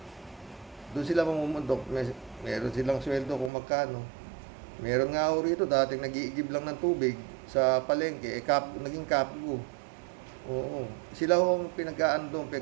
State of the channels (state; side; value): drops out; left; at 3.5 s